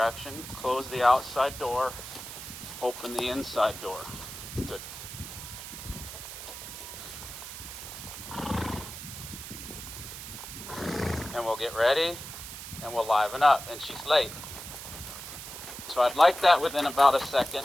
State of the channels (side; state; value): right; noise; hiss, 10 dB below the sound